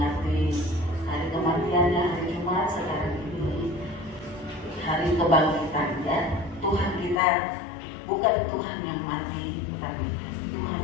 hari kematiannya hari Jumat, sekarang ini hari kebangkitan ya. Tuhan kita bukan Tuhan yang mati, tapi Tuhan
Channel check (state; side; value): drops out; right; at 7.2 s